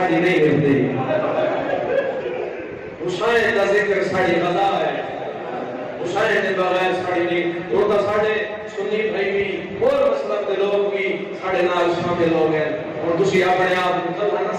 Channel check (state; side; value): identical; both; correlation 1.00